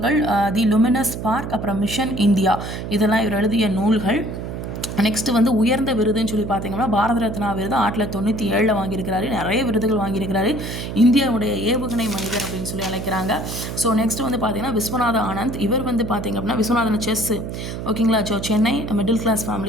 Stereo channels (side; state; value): right; noise; hum, 6 dB below the sound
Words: தி லுமினஸ் ஸ்பார்க், அப்புறம் மிஷன் இந்தியா, இதெல்லாம் இவர் எழுதிய நூல்கள். நெக்ஸ்ட் வந்து உயர்ந்த விருதுன்னு சொல்லி பார்த்தீங்கன்னா பாரத ரத்னா விருது 1997 வாங்கியிருக்கிறாரு. நிறைய விருதுகள் வாங்கியிருக்கிறாரு. இந்தியாவுடைய ஏவுகணை மனிதர் அப்படின்னு சொல்லி அழைக்கிறாங்க. ஸோ நெக்ஸ்ட் வந்து பார்த்தீங்கன்னா விஸ்வநாத ஆனந்த். இவர் வந்து பார்த்தீங்க அப்படின்னா விஸ்வநாதன் செஸ். ஓகேங்களா. So Chennai middle class